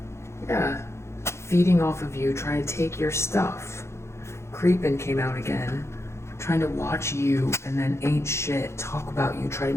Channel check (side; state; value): right; late; 0.13 ms